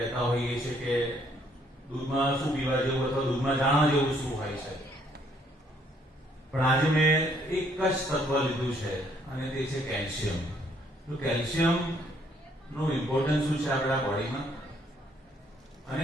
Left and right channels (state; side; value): normal; both; correlation 0.67